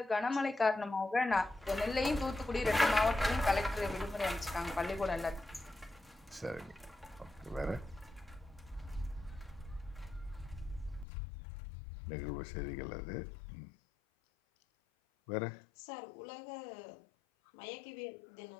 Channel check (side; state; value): right; drops out; at 11.1 s